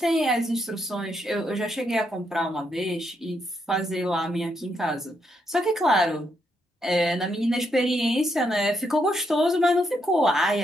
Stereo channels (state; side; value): normal; both; correlation 0.78